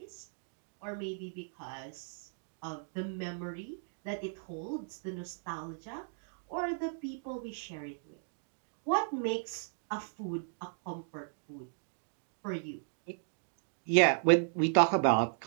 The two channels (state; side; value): silent; left; digital silence